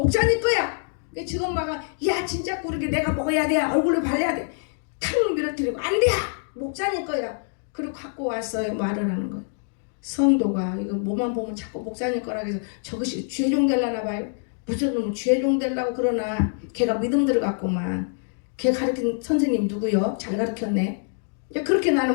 거야. 지금 막야 진짜 그렇게 내가 먹어야 돼. 얼굴에 발라야 돼. 탁 밀어뜨리고 안 돼. 목사님 거야. 그리고 갖고 왔어요. 말을 하는 거예요. 성도가 이거 뭐만 보면 자꾸 목사님 거라 해서 저것이 죄종 되려나 봐요. 무슨 놈은 죄종 되려고 그러나 걔가 믿음 들어갔구만. 걔 가르친 선생님 누구요? 잘 가르쳤네. 그렇게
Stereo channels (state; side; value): silent; right; 57 dB below the other